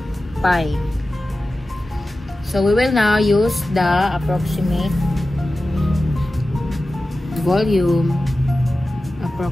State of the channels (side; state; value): both; normal; correlation 0.94